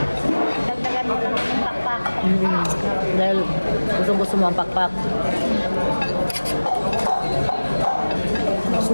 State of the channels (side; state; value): both; inverted; correlation -1.00